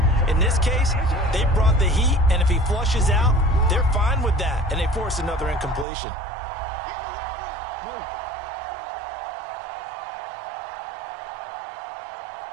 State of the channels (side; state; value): left; drops out; at 5.9 s